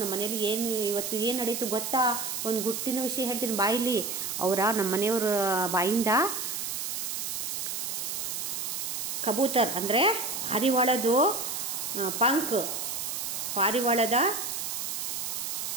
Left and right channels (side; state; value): right; noise; hiss, 3 dB below the sound